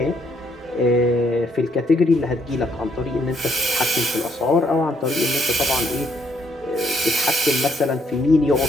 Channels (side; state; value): both; normal; correlation 0.70